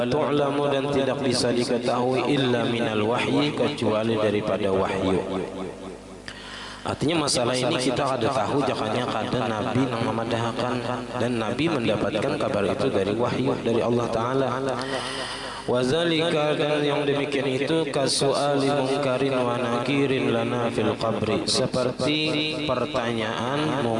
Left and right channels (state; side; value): identical; both; correlation 1.00